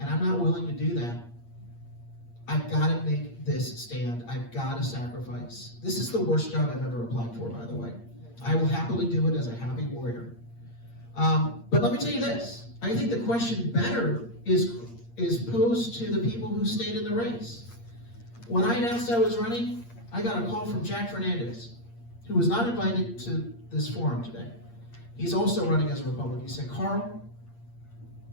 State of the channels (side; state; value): right; late; 8.6 ms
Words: I'm not willing to do that. I've got to make this stand. I've got to sacrifice. This is the worst job I've ever applied for, by the way. I will happily do it as a happy warrior. But let me tell you this. I think the question better is posed to the people who stayed in the race. When I announced I was running, I got a call from Jack Fernandez, who was not invited to this forum today. He's also running as a Republican. He said, Carl,